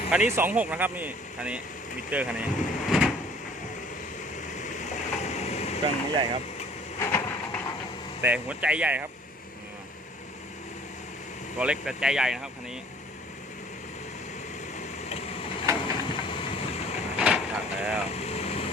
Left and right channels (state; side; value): normal; both; correlation 0.53